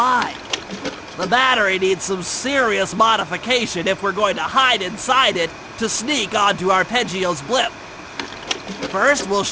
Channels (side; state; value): both; identical; correlation 1.00